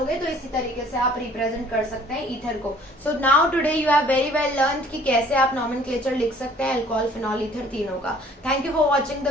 तो इसी तरीके से आप रिप्रेजेंट कर सकते हैं ईथर को। So now today you have very well learn कि कैसे आप नॉमेनक्लेचर लिख सकते हैं अल्कोहल, फिनॉल, ईथर तीनों का। Thank you for watching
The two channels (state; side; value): normal; both; correlation 0.55